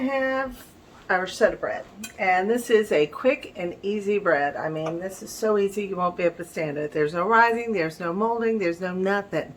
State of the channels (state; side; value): identical; both; correlation 1.00